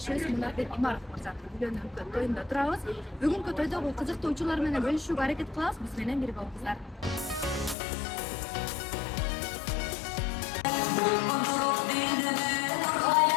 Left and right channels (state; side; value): drops out; right; at 7.8 s